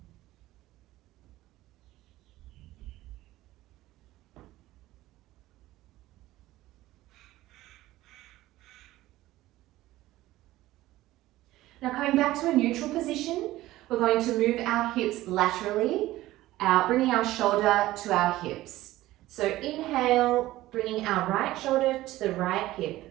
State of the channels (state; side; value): quieter; left; 16.4 dB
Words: Now coming back to a neutral position, we're going to move our hips laterally, bringing our shoulder to our hips. So inhale, bringing our right shoulder to the right hip.